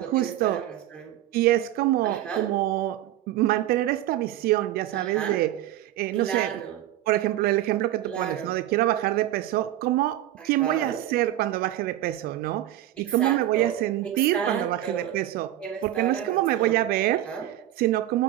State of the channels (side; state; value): left; quieter; 13.5 dB